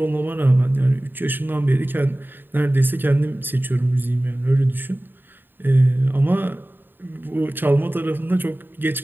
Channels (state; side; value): late; left; 0.094 ms